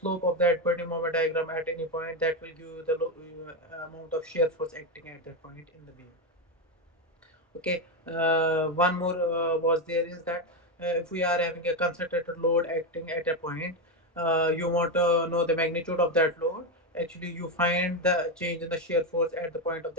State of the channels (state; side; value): normal; both; correlation 0.09